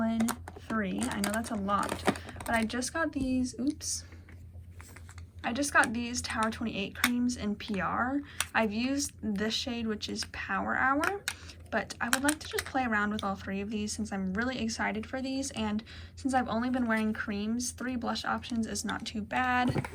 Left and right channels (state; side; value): identical; both; correlation 1.00